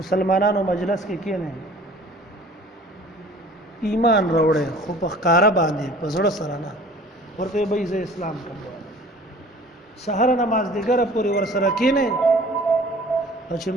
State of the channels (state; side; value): normal; both; correlation 0.48